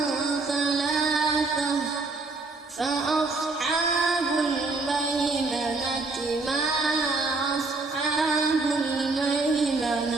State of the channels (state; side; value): quieter; left; 3.6 dB